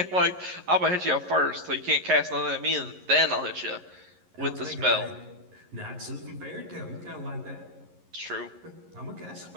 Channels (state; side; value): late; left; 11 ms